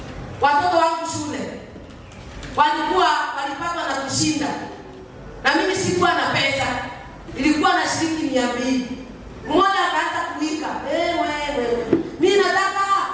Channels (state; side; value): identical; both; correlation 1.00